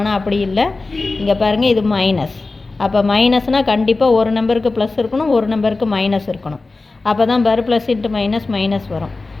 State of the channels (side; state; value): right; quieter; 3.5 dB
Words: அப்படி இல்லை. இங்கே பாருங்கள், இது மைனஸ். அப்போ மைனஸ்னால் கண்டிப்பாக ஒரு நம்பருக்கு ப்ளஸ் இருக்கணும், ஒரு நம்பருக்கு மைனஸ் இருக்கணும். அப்போ தான் பாரு ப்ளஸ் இன்ட்டு மைனஸ் வரும்.